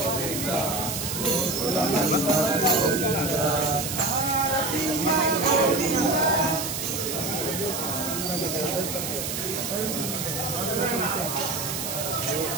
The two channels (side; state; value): right; noise; hiss, 4 dB below the sound